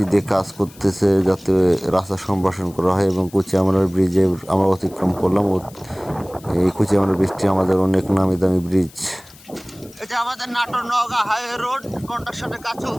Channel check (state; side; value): noise; left; hiss, 23 dB below the sound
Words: দিয়ে কাজ করতেছে, যাতে রাস্তা সম্প্রসারণ করা হয়। এবং কুচিয়ামার ব্রিজে আমরা অতিক্রম করলাম। এই কুচিয়ামার ব্রিজটি আমাদের অনেক নামি দামি ব্রিজ। এটা আমাদের নাটোর নওগাঁ হাইওয়ে রোড, কন্ট্রাকশনের কাজ